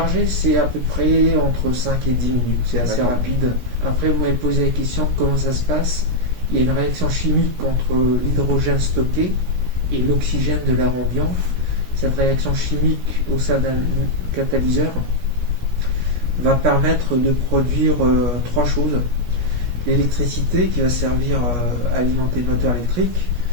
c'est à peu près entre 5 et 10 minutes. C'est assez rapide. Après, vous m'avez posé la question comment ça se passe. Il y a une réaction chimique entre l'hydrogène stocké et l'oxygène de l'air ambiant. Cette réaction chimique au sein d'un catalyseur va permettre de produire trois choses. L'électricité qui va servir à alimenter le moteur électrique.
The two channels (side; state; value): left; late; 17 ms